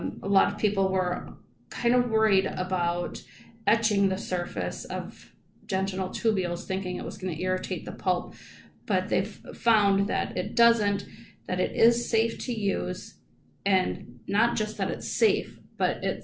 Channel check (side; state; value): both; identical; correlation 1.00